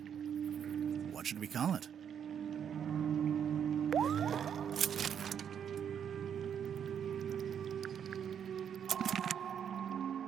What should we call it?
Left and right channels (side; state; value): left; quieter; 8.3 dB